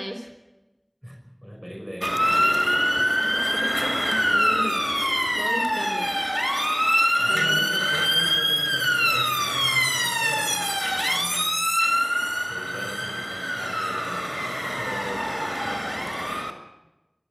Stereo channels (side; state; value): both; identical; correlation 1.00